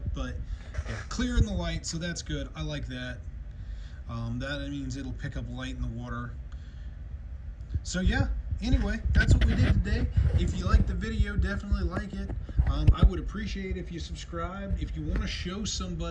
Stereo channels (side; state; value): both; identical; correlation 1.00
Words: but yeah, clear in the light, so that's good. I like that. That means it'll pick up light in the water. So yeah, anyway, that's what we did today. If you liked the video, definitely like it. I would appreciate if you subscribed. If you want to show